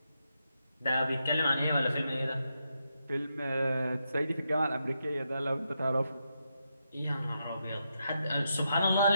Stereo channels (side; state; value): both; inverted; correlation -0.83